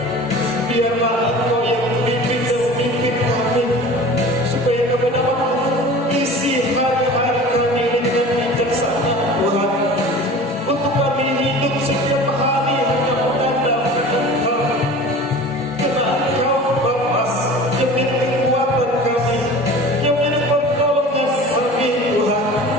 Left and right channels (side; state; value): both; normal; correlation 0.39